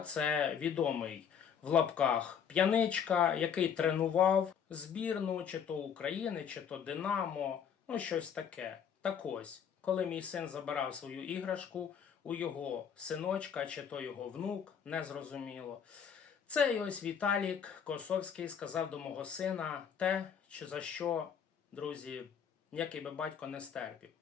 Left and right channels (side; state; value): right; quieter; 7.6 dB